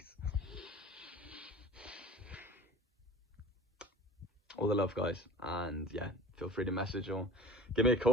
All the love, guys. And yeah, feel free to message or give me a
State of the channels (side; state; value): both; normal; correlation 0.40